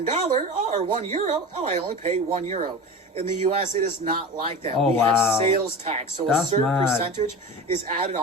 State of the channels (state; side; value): normal; both; correlation 0.31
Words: €1, I only pay €1. In the U.S., it is not like that. We have sales tax. So a certain percentage is added